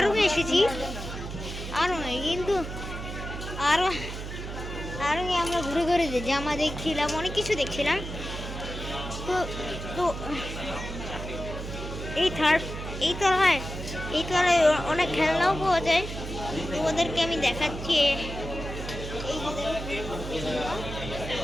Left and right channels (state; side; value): noise; right; hum, 7 dB below the sound